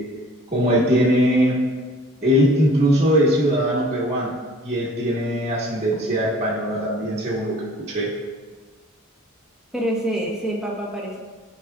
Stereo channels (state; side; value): normal; both; correlation 0.51